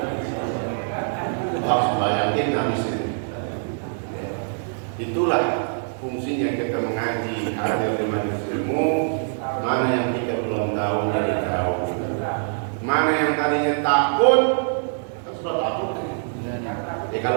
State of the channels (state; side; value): silent; left; 63 dB below the other